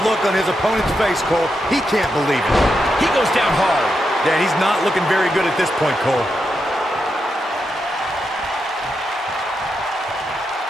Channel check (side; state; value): both; normal; correlation 0.85